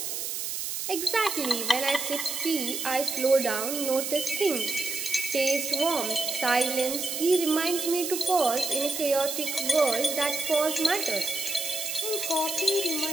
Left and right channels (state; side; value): noise; right; hiss, 4 dB below the sound